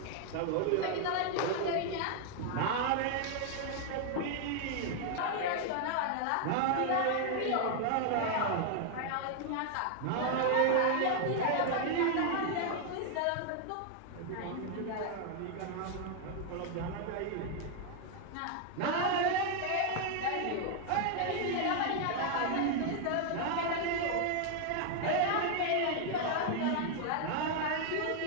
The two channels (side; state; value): both; different; correlation 0.00